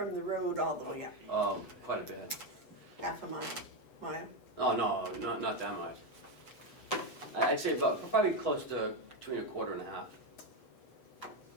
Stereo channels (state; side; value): late; right; 8.1 ms